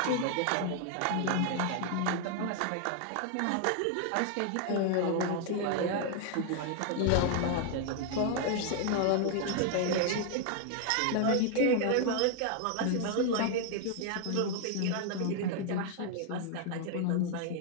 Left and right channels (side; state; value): both; different; correlation 0.00